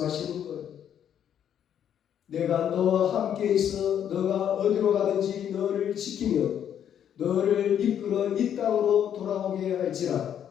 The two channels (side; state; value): right; quieter; 9.4 dB